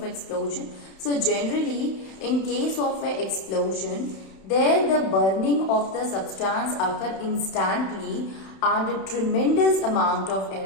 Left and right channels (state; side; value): late; right; 31 ms